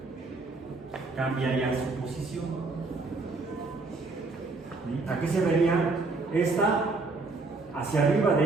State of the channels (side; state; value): left; quieter; 3.7 dB